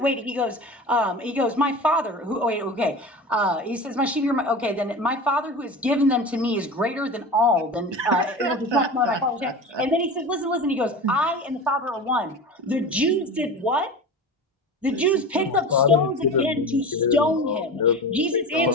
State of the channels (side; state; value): both; normal; correlation 0.31